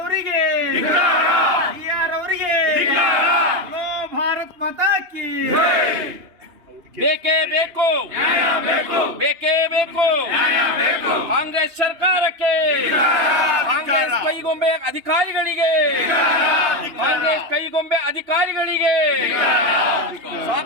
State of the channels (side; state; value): left; late; 2.9 ms